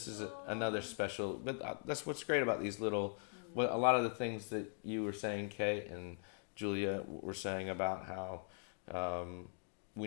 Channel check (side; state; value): right; silent; 50 dB below the other